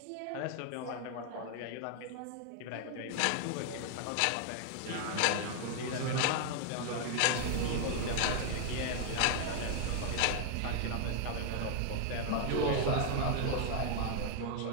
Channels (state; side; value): different; both; correlation 0.00